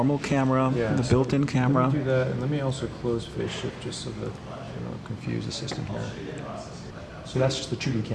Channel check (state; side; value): identical; both; correlation 1.00